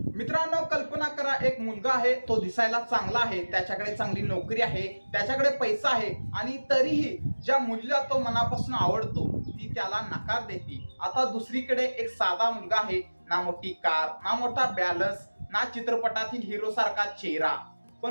मित्रांनो, कल्पना करा, एक मुलगा आहे, तो दिसायला चांगला आहे, त्याच्याकडे चांगली नोकरी आहे, त्याच्याकडे पैसा आहे आणि तरीही ज्या मुलीला तो मनापासून आवडतो ती त्याला नकार देते. आता दुसरीकडे एक साधा मुलगा आहे, ना मोठी कार, ना मोठा बॅलन्स, ना चित्रपटातील हिरो सारखा चेहरा,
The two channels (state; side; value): inverted; both; correlation -1.00